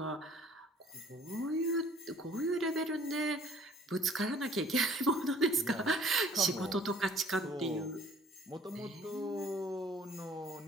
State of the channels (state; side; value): normal; both; correlation 0.54